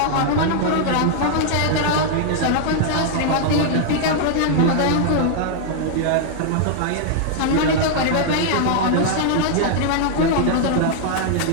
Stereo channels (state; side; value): different; both; correlation -0.01